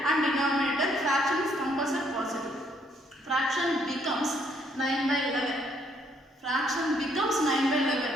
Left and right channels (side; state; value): both; normal; correlation 0.69